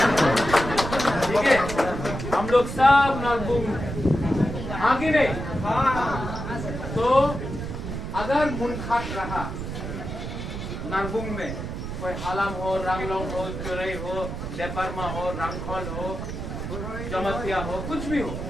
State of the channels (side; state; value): right; noise; rumble, 6 dB below the sound